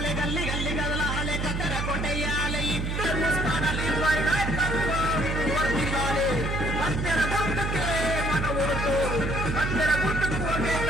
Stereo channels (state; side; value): noise; right; hum, 1 dB below the sound